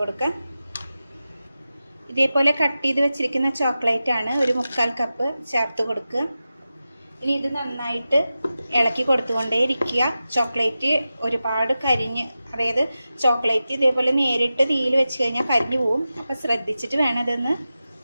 കൊടുക്കാം. ഇതേപോലെ കട്ട് ചെയ്ത് വെച്ചിരിക്കുന്ന ചോക്ലേറ്റ് ആണ് ഒരു 3/4 കപ്പ് ചേർത്ത് കൊടുക്കുക. ഇനി ഇത് നന്നായിട്ട് ഇളക്കി കൊടുത്തുകൊണ്ടേയിരിക്കുക. ചോക്ലേറ്റ് ഒരുപാട് അതായത് ചോക്ലേറ്റ് ഇതേപോലെ നേരിട്ട് തീയിൽ വെച്ച് കഴിഞ്ഞാൽ കരിഞ്ഞു പോവും. അപ്പോൾ ശ്രദ്ധിച്ചിട്ട് വേണം ഇതൊന്ന്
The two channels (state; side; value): inverted; both; correlation -0.93